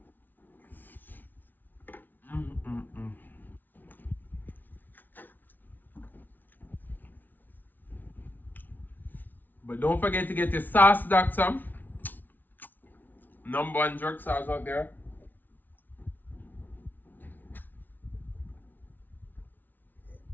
Mm. But don't forget to get your sauce, Dackta. #1 jerk sauce out there.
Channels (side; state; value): right; late; 0.086 ms